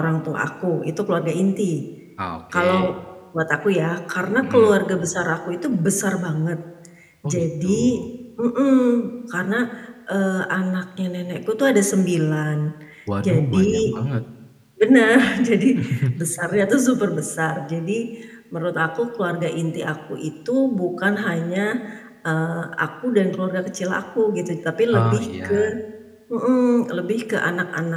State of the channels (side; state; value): both; identical; correlation 1.00